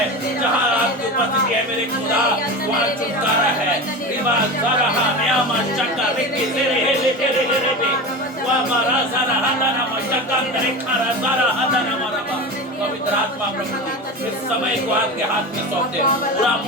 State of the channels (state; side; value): normal; both; correlation 0.27